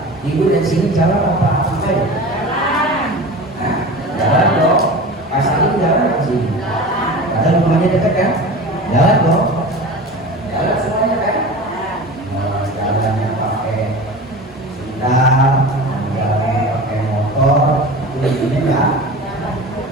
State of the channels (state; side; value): normal; both; correlation 0.34